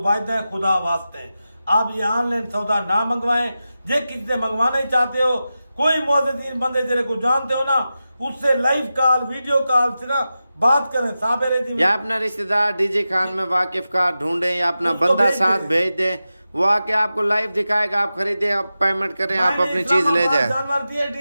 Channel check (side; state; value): both; inverted; correlation -0.93